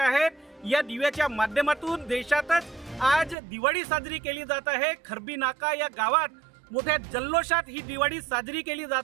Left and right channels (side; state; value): left; drops out; at 3.4 s